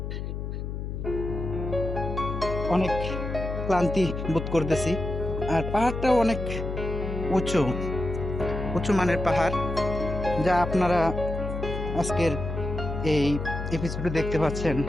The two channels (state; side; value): noise; left; hum, 5 dB below the sound